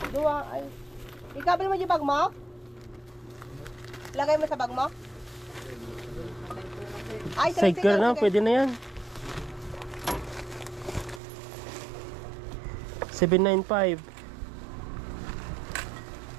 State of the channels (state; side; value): drops out; left; at 11.2 s